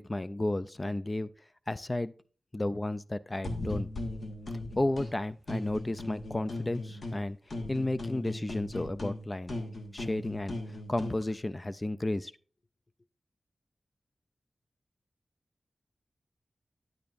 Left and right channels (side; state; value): both; normal; correlation 0.98